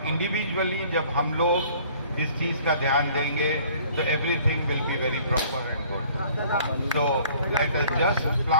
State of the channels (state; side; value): inverted; both; correlation -0.54